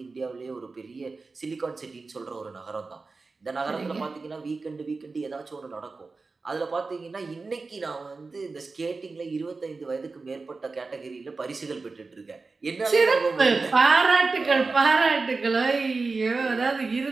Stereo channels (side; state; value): left; quieter; 4.0 dB